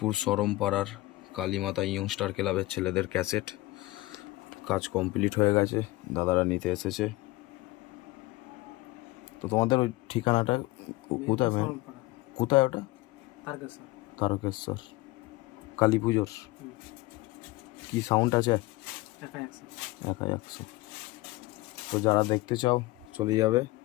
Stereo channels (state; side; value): quieter; right; 19.7 dB